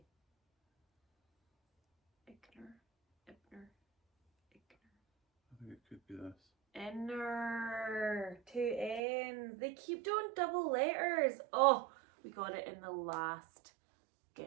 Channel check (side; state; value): left; drops out; at 9.0 s